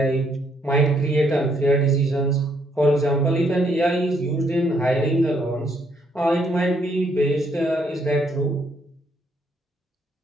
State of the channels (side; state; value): both; normal; correlation 0.71